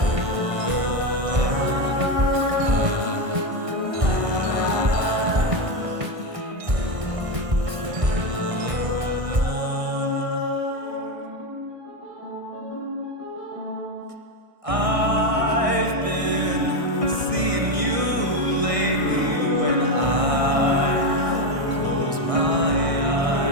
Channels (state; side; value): late; left; 1.6 ms